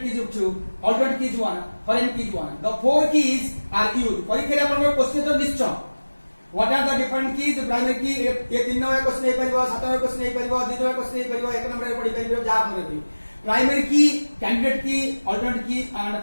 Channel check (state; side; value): inverted; both; correlation -1.00